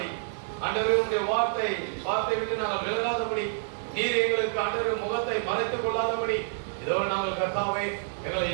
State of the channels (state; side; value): silent; left; digital silence